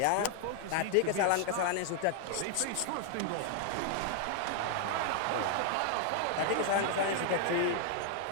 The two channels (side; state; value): both; different; correlation 0.00